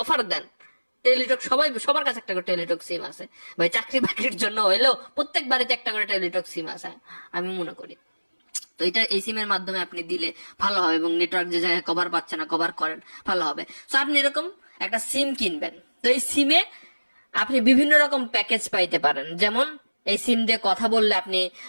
অফার দেন। টেলিটক সবার কাছে একটা করে টেলিটক সিম আছে ভাই, চাকরি বাকরির জন্য হইলেও প্রত্যেক বাড়িতে একটা করে টেলিটক সিম আছে আমি মনে করি। তো এটা এই সিমের মাধ্যমে আপনি দিলে ভালো হবে, এবং নেটওয়ার্ক যে জায়গায় কভার পাচ্ছে না কভার করেন ভালো হবে। তো আপনি এরকম একটা সিম কিনবেন, তো এই সিমে আপনি বিভিন্ন রকম প্যাকেজ পাইতে পারেন। যেমন এই সিম দিয়ে কথা বললে আপনি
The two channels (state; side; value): inverted; both; correlation -1.00